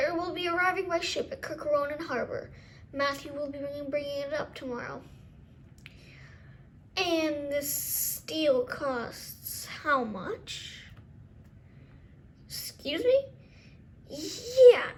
will be arriving by ship at Kirkaronen Harbor. Matthew will be bringing it up tomorrow. And this steel costs how much? Excuse me? Yeah,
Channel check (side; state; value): both; identical; correlation 1.00